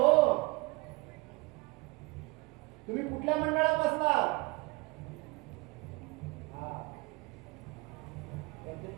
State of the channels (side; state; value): left; quieter; 25.3 dB